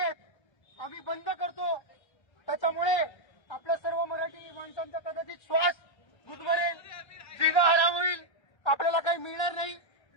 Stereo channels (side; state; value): right; late; 1.3 ms